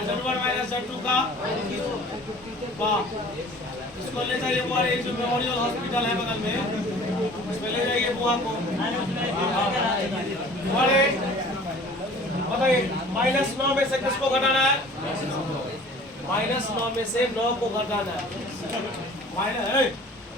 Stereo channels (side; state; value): both; normal; correlation 0.47